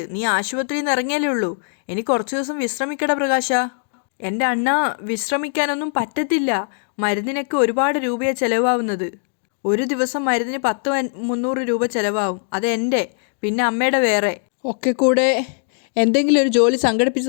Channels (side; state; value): right; silent; digital silence